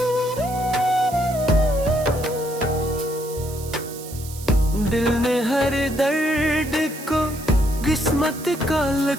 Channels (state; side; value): noise; right; hiss, 14 dB below the sound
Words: दिल ने हर दर्द को किस्मत का